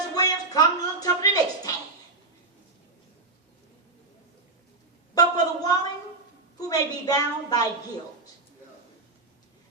Williams, come a little tougher the next time. But for the woman who may be bound by guilt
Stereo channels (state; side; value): quieter; left; 3.4 dB